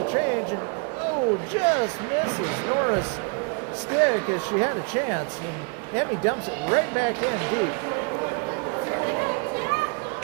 change, and oh, just misses Nora's stick as she had a chance, and Emmy dumps it right back in deep.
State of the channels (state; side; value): quieter; left; 34.1 dB